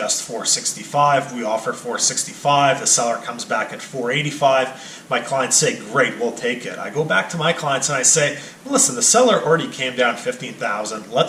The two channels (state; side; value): identical; both; correlation 1.00